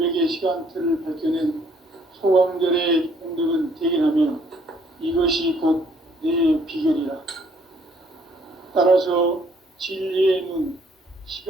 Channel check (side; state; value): both; normal; correlation 0.64